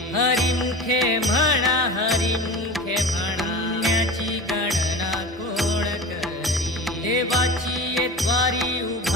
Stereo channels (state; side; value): normal; both; correlation 0.32